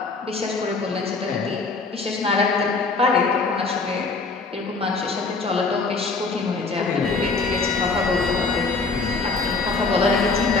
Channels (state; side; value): quieter; right; 4.0 dB